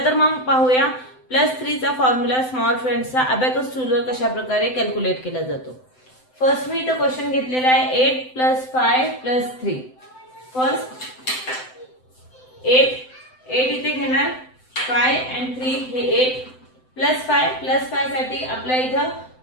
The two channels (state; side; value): late; right; 7.8 ms